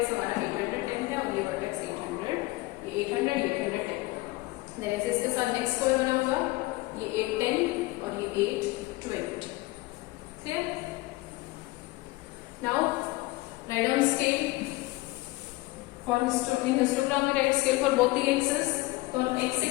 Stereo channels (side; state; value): right; quieter; 21.1 dB